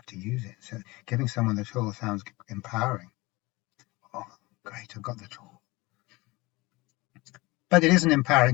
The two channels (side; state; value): right; quieter; 22.3 dB